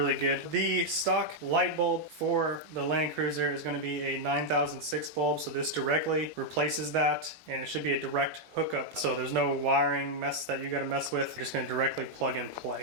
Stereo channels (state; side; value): late; left; 18 ms